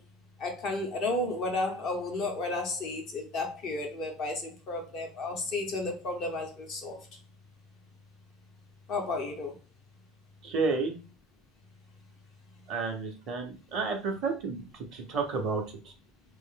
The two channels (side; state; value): both; normal; correlation 0.40